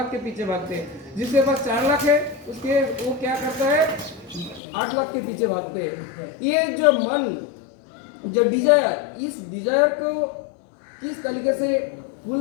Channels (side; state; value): right; drops out; at 4.6 s